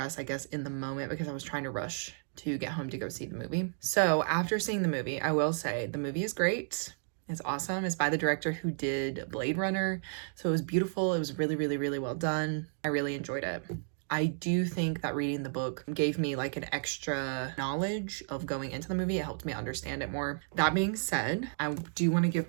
I guess, in the moment, because I was trying to rush to get home to go see the movie. So after seeing the movie, I will say the movie is great. It's awesome. It's by the director who did Blade Runner. So it was beautiful. It was really, really, really well done. I really enjoyed it. I do think that reading the book gave me like an extra knowledge of going into the movie. It helped me understand it more. That being said, I do want to give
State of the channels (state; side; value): silent; left; digital silence